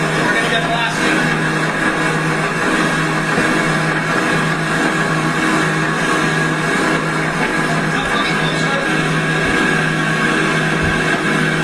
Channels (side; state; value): both; identical; correlation 1.00